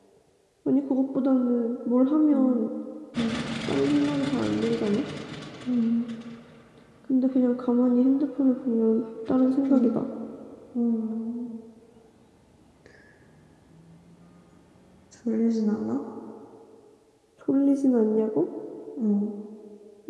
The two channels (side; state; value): both; identical; correlation 1.00